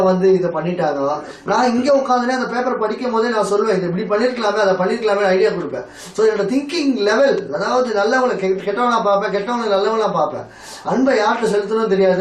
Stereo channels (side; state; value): both; identical; correlation 1.00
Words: இதை பண்ணிட்டாங்க. நான் இங்க உட்காந்துனே அந்த பேப்பர் படிக்கும் போதே நான் சொல்லுவேன், இது இப்படி பண்ணிருக்கலாமே, அதை பண்ணிருக்கலாமே ஐடியா கொடுப்பேன். ஸோ என்னோட திங்கிங் லெவல், அதாவது நல்லவங்களை கெட்டவனா பார்ப்பேன், கெட்டவங்களை நல்லவனா பார்ப்பேன். அன்பை யார்கிட்ட செலுத்தணும்